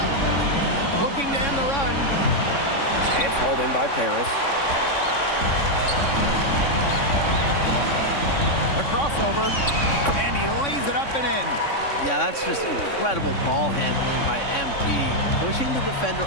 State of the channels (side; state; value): right; late; 3.6 ms